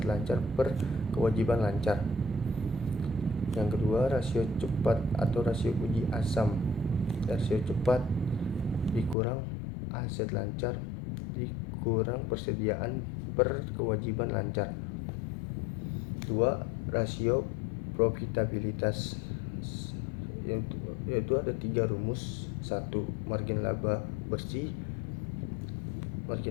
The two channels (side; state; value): right; drops out; at 9.2 s